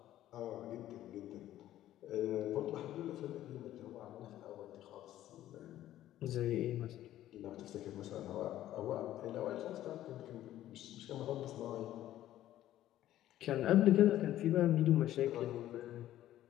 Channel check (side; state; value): right; quieter; 13.3 dB